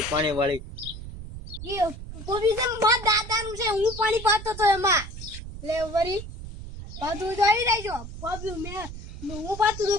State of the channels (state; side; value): noise; right; rumble, 11 dB below the sound